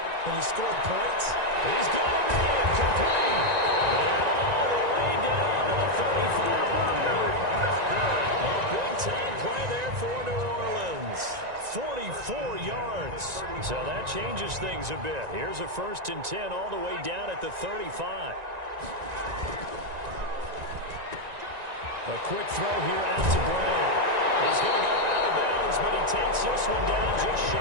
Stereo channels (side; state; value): left; late; 1.9 ms